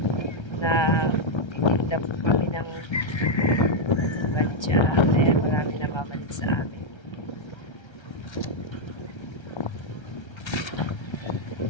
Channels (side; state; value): right; late; 1.3 ms